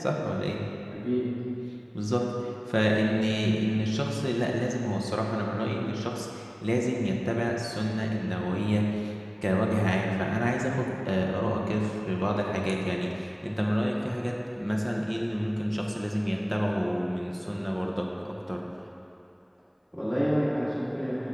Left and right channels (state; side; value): identical; both; correlation 1.00